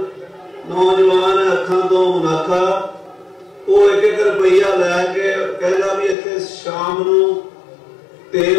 ਨੌਜਵਾਨ ਹੈ, ਅੱਖਾਂ ਤੋਂ ਮੁਨਾਖਾ, ਉਹ 1-1 ਰੁਪਈਆ ਲੈ ਕੇ ਕਹਿੰਦਾ ਵੀ ਇੱਥੇ ਸ਼ਾਮ ਨੂੰ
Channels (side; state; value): right; drops out; at 6.2 s